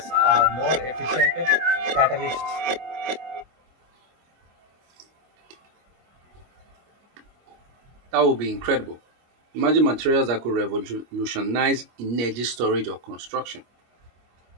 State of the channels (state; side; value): late; left; 25 ms